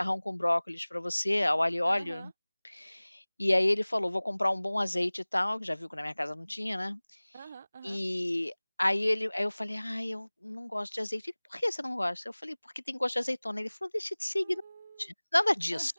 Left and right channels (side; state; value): both; inverted; correlation -1.00